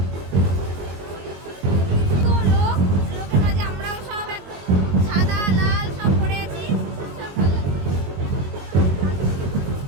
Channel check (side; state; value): left; late; 21 ms